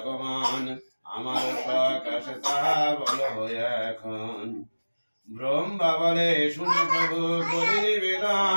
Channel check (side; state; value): both; inverted; correlation -1.00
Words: আমার সকাশে তাহা বল হয়ে এখন। ব্রহ্মা বলে শুনে প্রভু করি